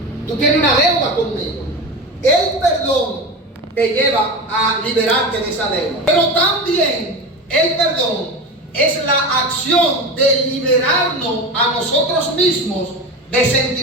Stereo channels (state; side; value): normal; both; correlation 0.25